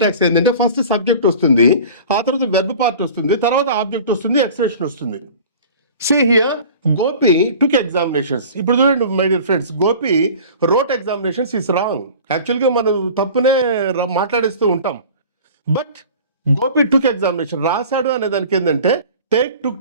ఏంటంటే ఫస్ట్ సబ్జెక్ట్ వస్తుంది, ఆ తర్వాత వెర్బ్ పార్ట్ వస్తుంది, తర్వాత ఆబ్జెక్ట్ వస్తుంది, ఎక్స్ప్రెషన్ వస్తుంది. See here, Gopi took examinations. ఇప్పుడు చూడండి my dear friends, Gopi wrote examinations is wrong. యాక్చువల్గా మనం తప్పునే మాట్లాడేస్తూ ఉంటాం. బట్ గోపి టుక్ ఎగ్జామినేషన్, రాశాడు అనే దానికి ఏంటంటే టేక్ టుక్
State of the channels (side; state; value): both; inverted; correlation -0.42